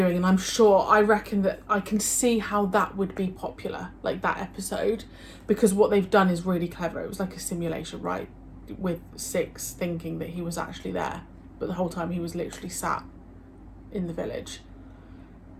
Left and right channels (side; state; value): both; identical; correlation 1.00